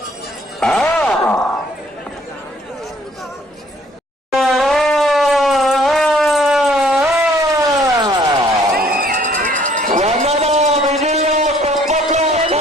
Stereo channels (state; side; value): normal; both; correlation 0.60